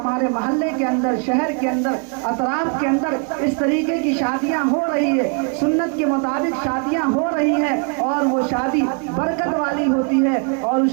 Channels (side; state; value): left; quieter; 38.7 dB